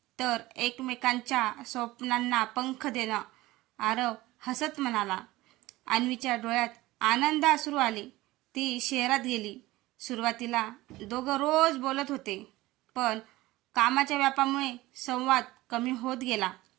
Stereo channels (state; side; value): quieter; left; 18.5 dB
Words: तर एकमेकांच्या स्वप्नांना पंख देणं। आरव हसत म्हणाला। अन्वीच्या डोळ्यात आनंद अश्रू आले। ती शहरात गेली। सुरुवातीला दोघं रोज बोलत होते, पण कामाच्या व्यापामुळे संवाद कमी होत गेला।